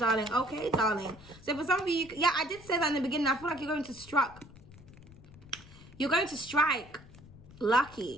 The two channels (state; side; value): noise; left; rumble, 20 dB below the sound